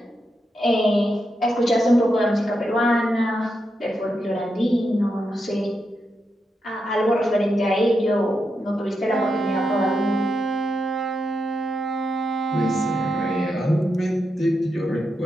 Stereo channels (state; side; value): normal; both; correlation 0.85